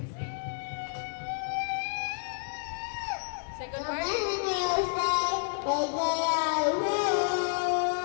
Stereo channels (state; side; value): silent; right; digital silence